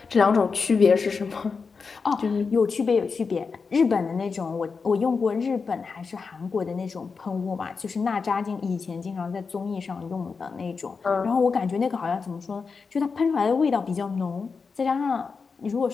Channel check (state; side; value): quieter; right; 5.0 dB